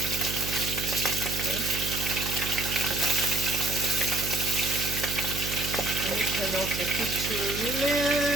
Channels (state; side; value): noise; right; hum, 6 dB below the sound